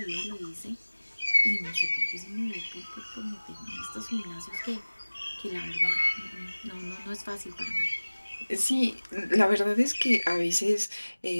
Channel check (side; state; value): both; inverted; correlation -1.00